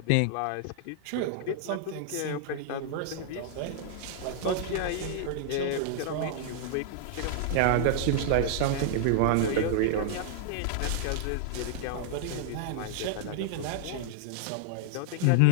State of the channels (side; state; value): both; different; correlation -0.01